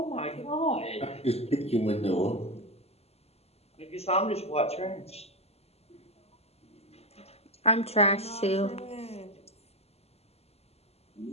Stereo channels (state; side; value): late; right; 0.30 ms